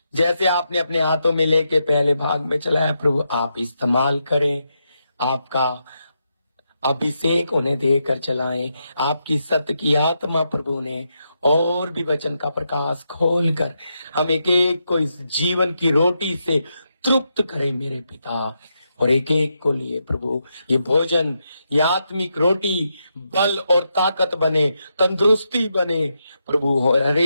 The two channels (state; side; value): inverted; both; correlation -0.83